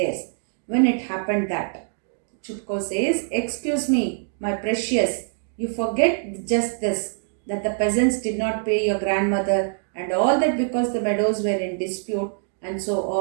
When it happened that, Chupko says, excuse me, my precious, you forget just this, that the peasants did not pay your grandmother and all that because the meadows were in dispute and so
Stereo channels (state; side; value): silent; left; digital silence